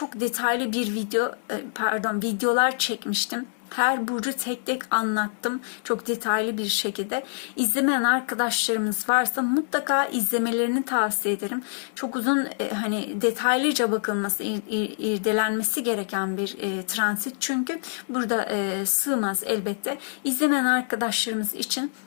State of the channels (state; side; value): silent; right; digital silence